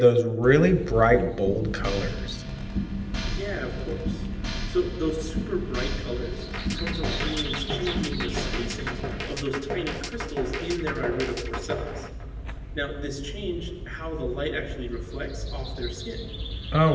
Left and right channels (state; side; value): identical; both; correlation 1.00